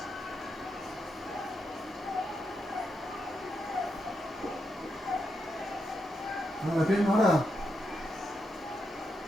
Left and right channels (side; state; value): both; normal; correlation 0.83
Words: Ahora bien, ahora.